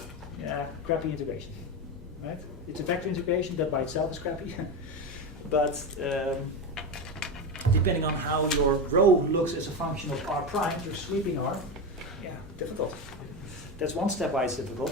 Yeah, crappy integration. Right? It's a vector integration that by itself is crappy. But depending on how your rho looks as a function of r prime, your sweeping r, yeah, difficult. That's one step why it's difficult.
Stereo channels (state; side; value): normal; both; correlation 0.17